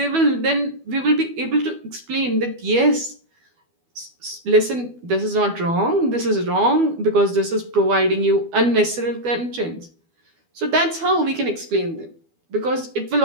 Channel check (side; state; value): left; late; 12 ms